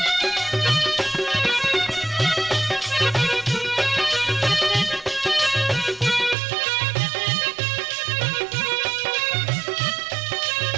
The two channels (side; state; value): left; drops out; at 6.4 s